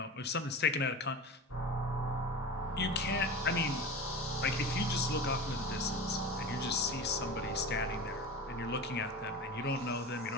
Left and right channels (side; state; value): both; normal; correlation 0.30